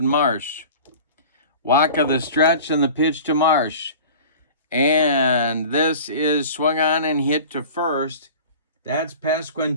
Marsh. Wacha the stretch, and the pitch to Marsh. And this is swung on and hit to first. That's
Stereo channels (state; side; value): inverted; both; correlation -0.40